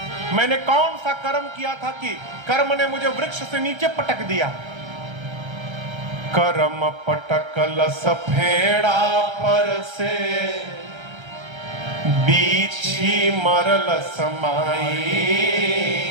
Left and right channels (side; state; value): left; late; 1.3 ms